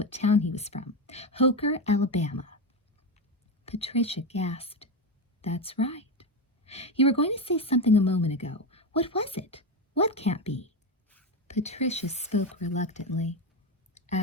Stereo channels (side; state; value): both; normal; correlation 0.14